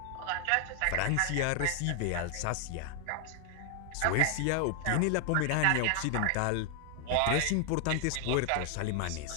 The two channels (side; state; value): both; different; correlation 0.00